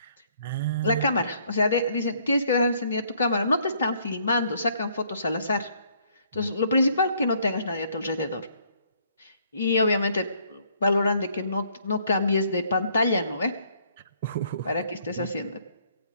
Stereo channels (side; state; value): both; inverted; correlation -0.65